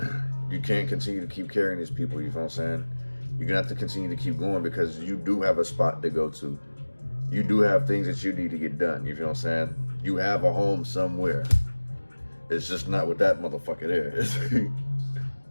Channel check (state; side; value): inverted; both; correlation -1.00